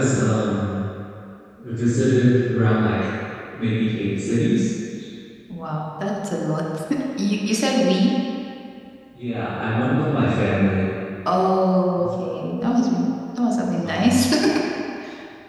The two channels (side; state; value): both; identical; correlation 1.00